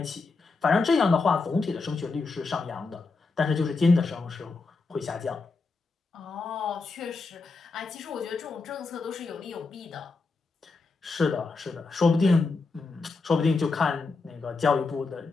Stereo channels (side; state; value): right; quieter; 4.0 dB